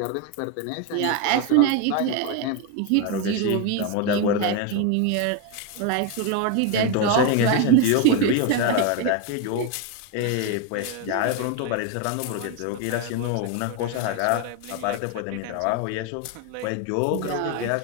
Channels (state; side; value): different; both; correlation 0.02